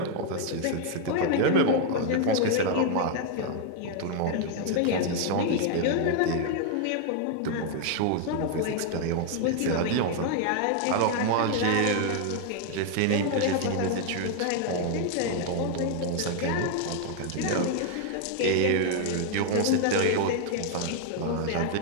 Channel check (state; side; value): different; both; correlation 0.00